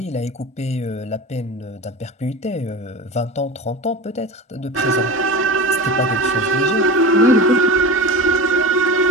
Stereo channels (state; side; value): normal; both; correlation 0.29